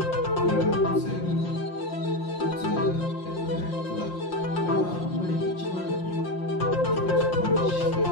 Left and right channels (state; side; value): late; right; 5.7 ms